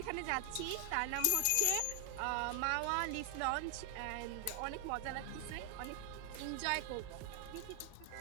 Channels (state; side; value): different; both; correlation 0.00